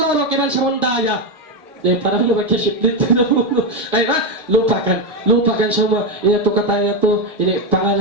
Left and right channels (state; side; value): normal; both; correlation 0.08